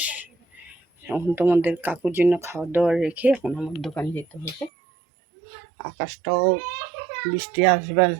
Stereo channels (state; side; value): drops out; left; at 4.7 s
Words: এখন তোমাদের কাকুর জন্য খাওয়া দাওয়া রেখে এখন আমার দোকানে যেতে হবে। আকাশটাও বৃষ্টি আসবে